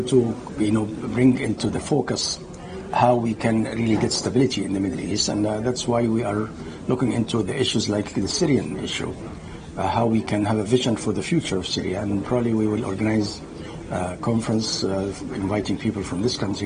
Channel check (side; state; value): both; identical; correlation 1.00